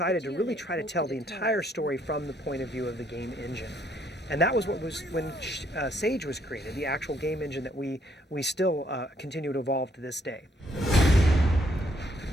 to really try to tell the entire story from the point of view of the game engine. And that was what was when Sage was created, the actual game engine that we still continue to evolve to this day.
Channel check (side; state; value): both; normal; correlation 0.69